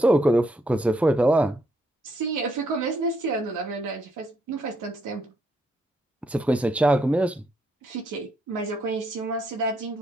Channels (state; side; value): normal; both; correlation 0.74